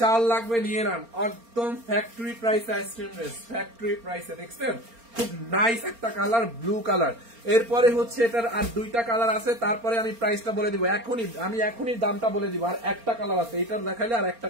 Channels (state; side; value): late; left; 4.3 ms